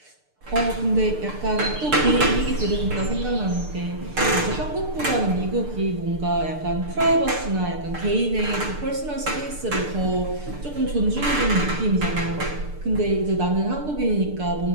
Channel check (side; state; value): left; late; 6.7 ms